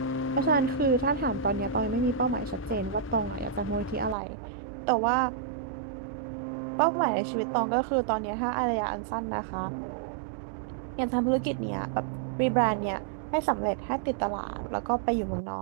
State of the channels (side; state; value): left; drops out; at 4.2 s